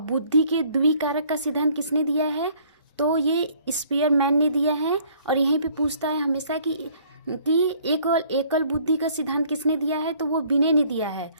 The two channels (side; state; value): both; inverted; correlation -0.59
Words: बुद्धि के द्विकारक का सिद्धांत किसने दिया है? तो ये स्पीयरमैन ने दिया है। और यहीं पे पूछता है हमेशा कि एकल बुद्धि का सिद्धांत किसने दिया है? तो वो बिने ने दिया है।